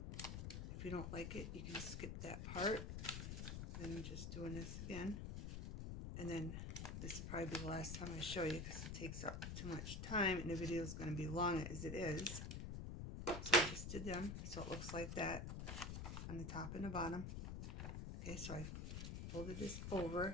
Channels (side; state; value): left; noise; rumble, 4 dB below the sound